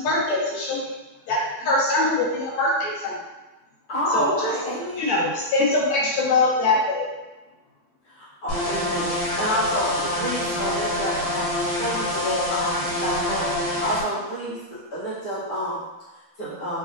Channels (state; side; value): late; right; 12 ms